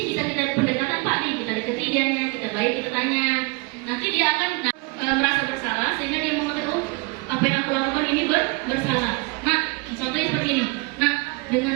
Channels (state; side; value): quieter; left; 27.5 dB